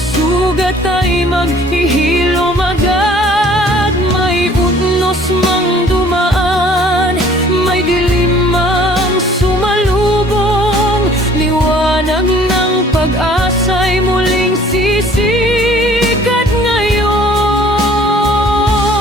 ay maghihilom agad. May utnos mang dumaan, may dilim mang sumalubong, liwanag ng pag-asa'y muling sisikat ngayon.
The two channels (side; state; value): both; normal; correlation 0.54